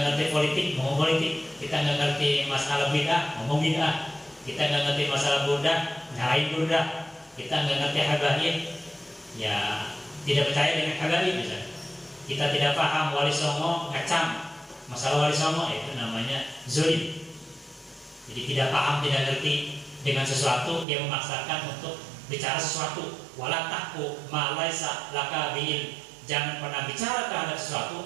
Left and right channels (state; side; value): drops out; left; at 20.9 s